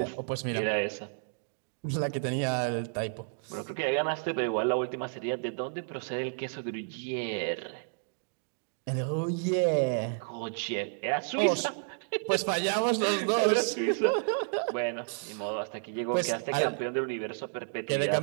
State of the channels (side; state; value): left; silent; digital silence